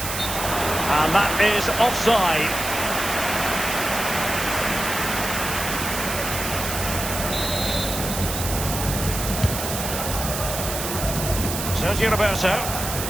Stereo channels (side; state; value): right; noise; hiss, 5 dB below the sound